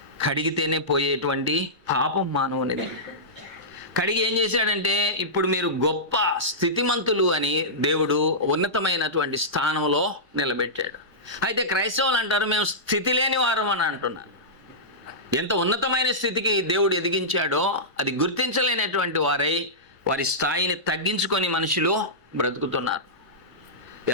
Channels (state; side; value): normal; both; correlation -0.16